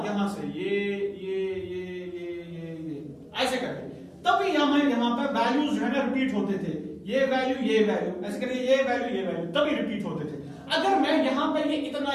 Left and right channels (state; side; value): identical; both; correlation 1.00